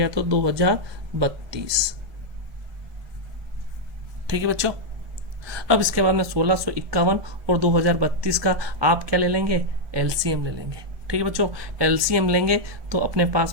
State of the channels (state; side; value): late; left; 1.7 ms